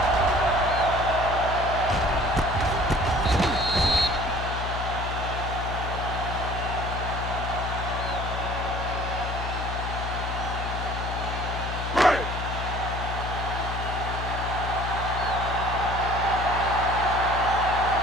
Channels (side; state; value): left; noise; hum, 4 dB below the sound